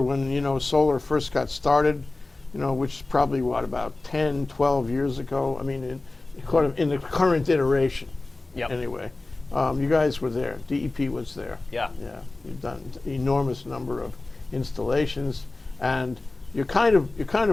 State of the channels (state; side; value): quieter; right; 3.1 dB